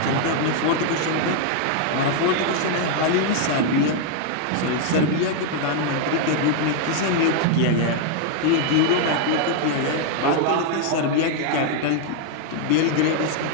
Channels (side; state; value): both; different; correlation 0.00